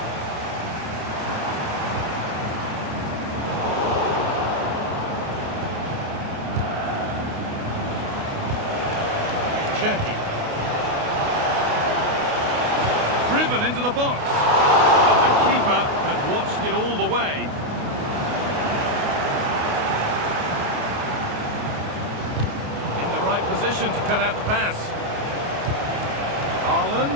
Cherki. Driven into the box. But the keeper had watched it all the way. In the right position to cut out the pass.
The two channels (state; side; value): late; left; 28 ms